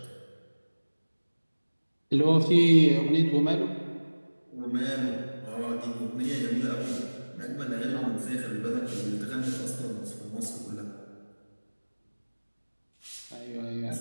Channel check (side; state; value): both; inverted; correlation -1.00